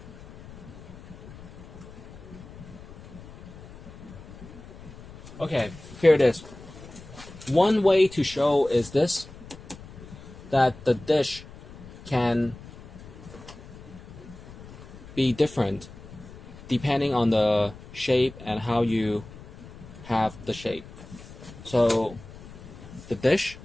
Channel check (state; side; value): noise; left; rumble, 17 dB below the sound